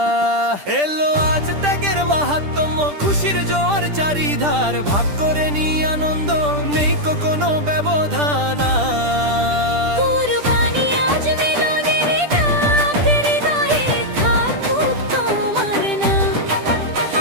এলো আজ ত্যাগের মাহাত্ম্য, খুশির জোয়ার চারিধার, ভাগ করে নি আনন্দ, নেই কোনো ব্যবধান আর। কুরবানি আজ মিলনের ডাক, হৃদয়ে থাকুক তোমার নাম।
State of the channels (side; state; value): left; late; 10 ms